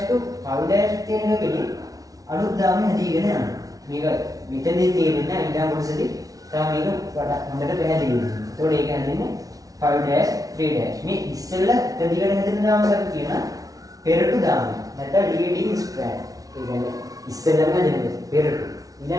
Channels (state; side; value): late; left; 0.18 ms